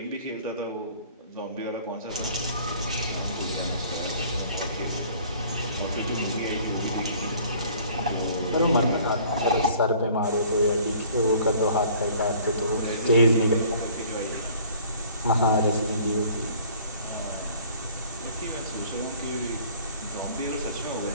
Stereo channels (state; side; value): inverted; both; correlation -0.52